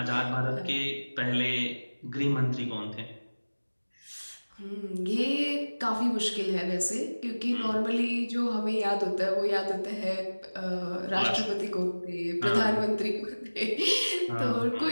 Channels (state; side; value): inverted; both; correlation -1.00